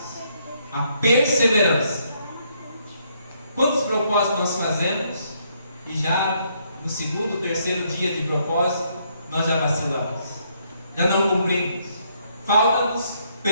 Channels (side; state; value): both; inverted; correlation -0.72